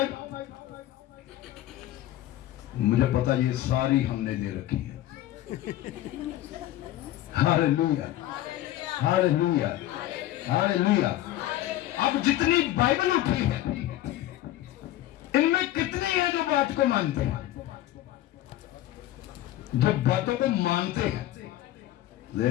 मुझे पता ये सारी हमने दे रखी है। Hallelujah, hallelujah, hallelujah. अब जितनी बाइबल उठी है, इनमें कितनी है जो बात को मानते हैं, जो बातों को मानते हैं?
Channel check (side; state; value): right; quieter; 14.2 dB